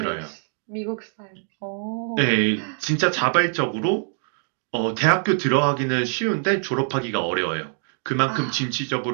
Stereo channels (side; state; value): left; silent; 63 dB below the other